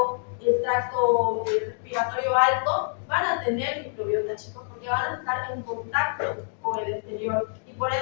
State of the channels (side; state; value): right; silent; digital silence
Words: el tracto respiratorio alto, van a tener microbiota, chicos, porque van a estar en contacto con el exterior y por